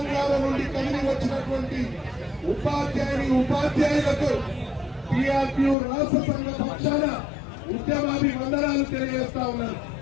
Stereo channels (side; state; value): right; drops out; at 5.8 s